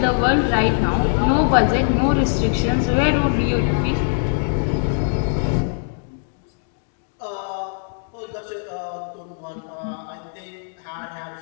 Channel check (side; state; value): right; silent; digital silence